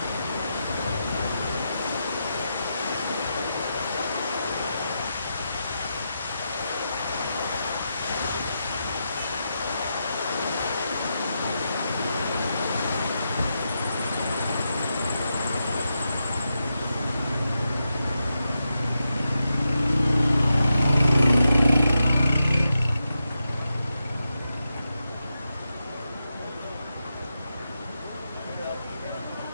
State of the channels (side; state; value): both; inverted; correlation -0.87